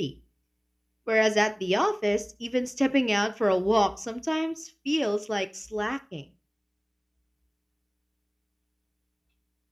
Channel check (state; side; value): identical; both; correlation 1.00